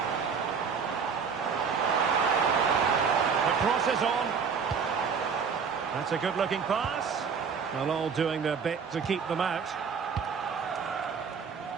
The cross is on. That's a good-looking pass. Well, all doing their bit to keep them out.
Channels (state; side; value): quieter; left; 6.1 dB